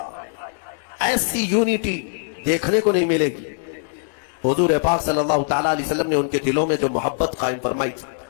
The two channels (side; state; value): right; silent; digital silence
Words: ایسی یونٹی دیکھنے کو نہیں ملے گی. حضور پاک صلی اللہ تعالیٰ علیہ وسلم نے ان کے دلوں میں جو محبت قائم فرمائی تھی.